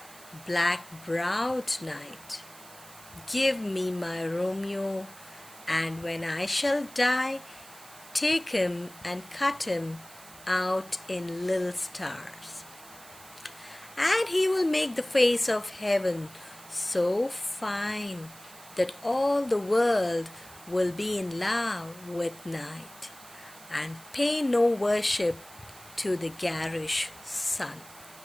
black-browed night, give me my Romeo, and when I shall die, take him and cut him out in little stars. And he will make the face of heaven so fine that all the world will be in love with night, and pay no worship to the garish sun."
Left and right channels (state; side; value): noise; right; hiss, 19 dB below the sound